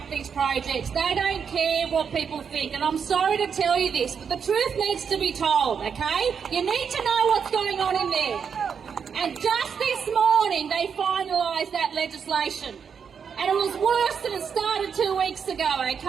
these projects. They don't care what people think. And I'm sorry to tell you this, but the truth needs to be told, okay? You need to know what's going on in there. And just this morning, they finalised that legislation. And it was worse than it started 2 weeks ago,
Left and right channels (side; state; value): left; quieter; 6.8 dB